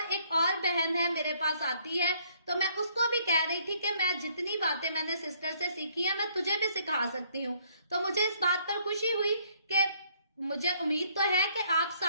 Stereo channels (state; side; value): inverted; both; correlation -0.65